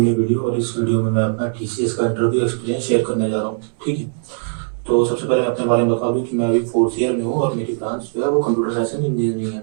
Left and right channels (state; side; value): silent; left; 66 dB below the other